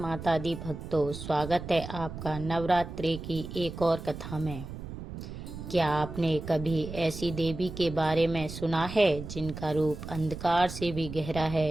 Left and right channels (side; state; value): right; noise; rumble, 10 dB below the sound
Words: दी भक्तों, स्वागत है आपका नवरात्रि की एक और कथा में। क्या आपने कभी ऐसी देवी के बारे में सुना है जिनका रूप अंधकार से भी गहरा